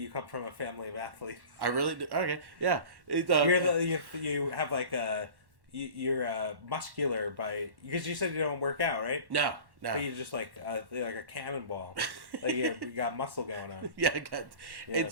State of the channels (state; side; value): late; left; 1.1 ms